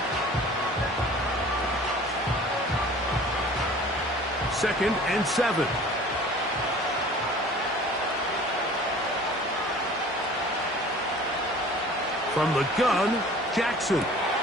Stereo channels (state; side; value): normal; both; correlation 0.46